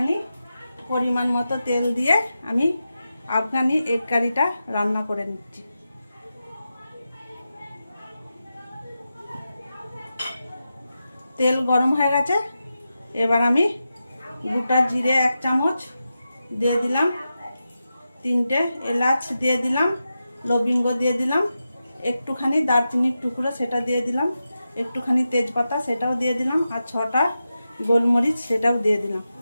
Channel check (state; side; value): inverted; both; correlation -0.90